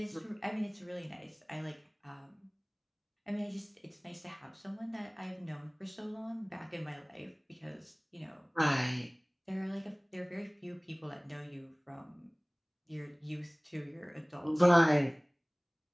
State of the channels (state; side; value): identical; both; correlation 1.00